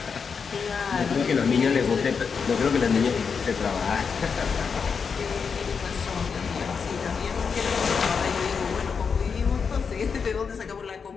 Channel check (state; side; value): quieter; right; 5.9 dB